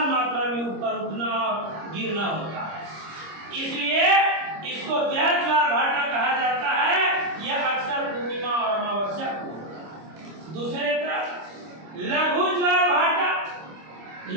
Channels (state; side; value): late; left; 25 ms